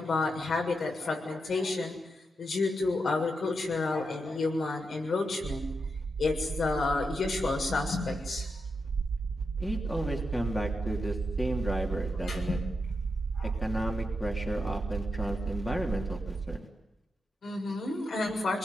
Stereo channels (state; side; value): normal; both; correlation 0.85